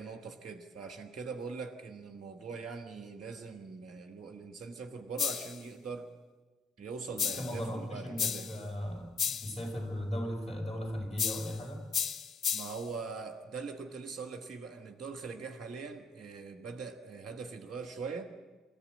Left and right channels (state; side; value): normal; both; correlation 0.67